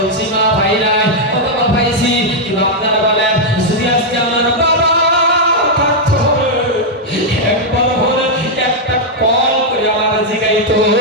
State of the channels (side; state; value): both; normal; correlation -0.03